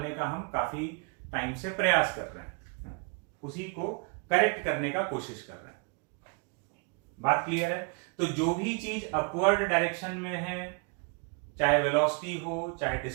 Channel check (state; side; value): quieter; left; 35.0 dB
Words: का हम काफी टाइम से प्रयास कर रहे हैं, उसी को करेक्ट करने का कोशिश कर रहे हैं। बात क्लियर है। तो जो भी चीज अपवर्ड डायरेक्शन में है, चाहे वेलोसिटी हो चाहे